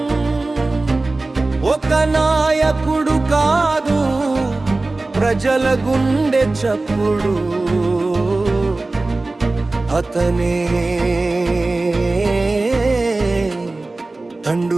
ఒక నాయకుడు కాదు, ప్రజల గుండె చప్పుడు అతనే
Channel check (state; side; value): quieter; left; 3.2 dB